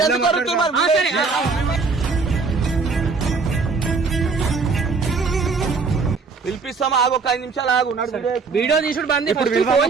పిలిపిస్తాం ఒక 5 నిమిషాలు ఆగు వీడియో తీసుడు బంది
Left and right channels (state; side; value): quieter; left; 4.6 dB